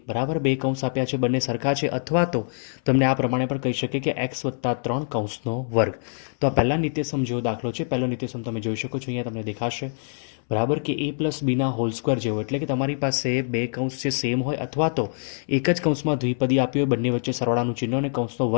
બરાબર બે કૌંસ આપ્યા છે, બંને સરખા છે, અથવા તો તમને આ પ્રમાણે પણ કહી શકે કે x+3 કૌંસનો વર્ગ. તો આ પહેલા નિત્યસમ જેવો દાખલો છે. પહેલો નિત્યસમ તમે જોઈ શકો છો, અહીંયા તમને દેખાશે બરાબર કે a+bના હોલ સ્ક્વેર જેવો, એટલે કે તમારી પાસે બે કૌંસ છે સેમ હોય, અથવા તો એક જ કૌંસમાં દ્વિપદી આપી હોય, બંને વચ્ચે સરવાળાનું ચિહ્ન અને કૌંસનો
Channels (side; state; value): right; silent; 62 dB below the other